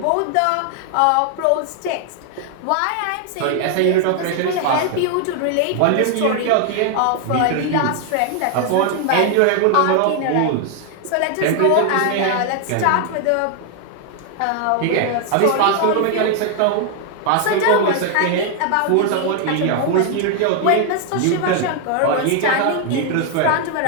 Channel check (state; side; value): different; both; correlation 0.00